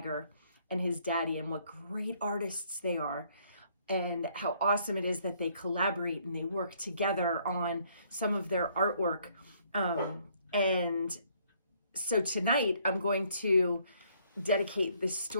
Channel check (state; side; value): inverted; both; correlation -0.66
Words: and his daddy, and what great artists they are. And how awesome it is that they collaborate and they work together on some of their artwork. And so tonight I'm going to dedicate this